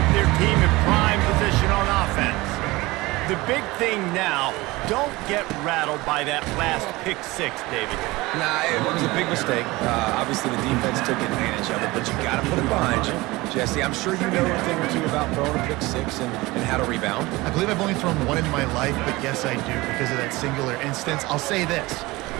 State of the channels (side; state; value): left; quieter; 21.1 dB